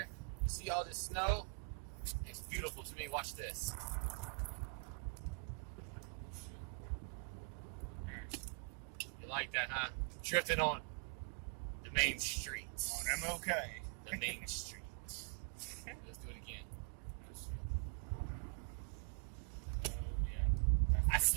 You see all this snow? It's beautiful to me. Watch this. You like that, huh? Drifting on the main streets. On MOK. The main street. Let's do it again. Oh, yeah. I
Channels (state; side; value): quieter; left; 35.3 dB